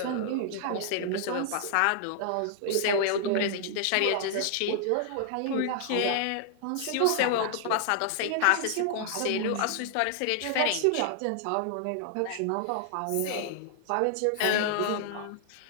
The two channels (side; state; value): both; different; correlation 0.00